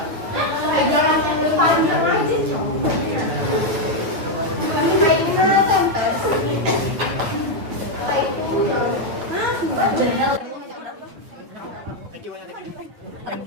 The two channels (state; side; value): late; left; 9.7 ms